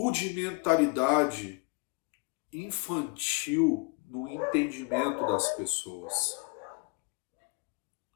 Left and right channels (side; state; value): right; quieter; 30.3 dB